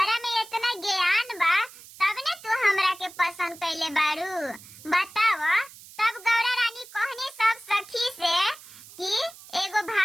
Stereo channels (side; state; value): right; noise; hiss, 19 dB below the sound